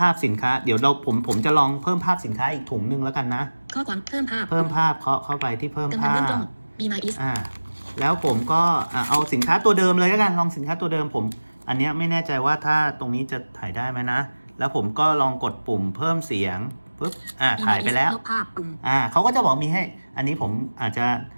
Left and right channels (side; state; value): both; inverted; correlation -1.00